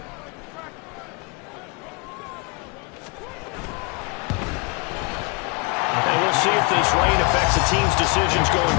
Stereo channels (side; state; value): right; quieter; 30.7 dB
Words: And we'll see if this rain affects the team's decisions going